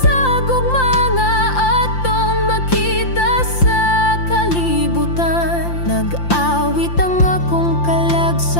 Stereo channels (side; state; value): right; late; 5.8 ms